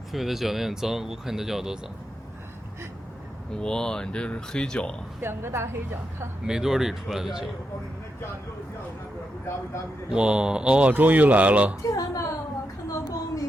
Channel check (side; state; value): both; normal; correlation 0.85